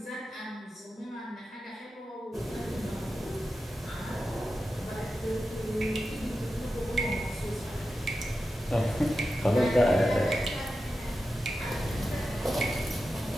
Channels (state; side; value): normal; both; correlation 0.91